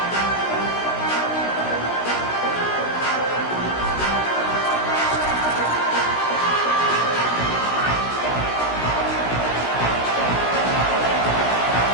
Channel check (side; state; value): right; late; 16 ms